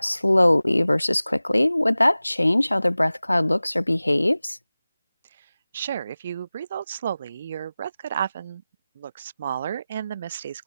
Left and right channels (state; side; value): inverted; both; correlation -0.97